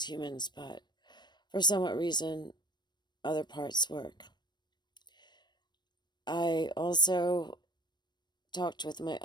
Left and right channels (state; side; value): late; right; 0.21 ms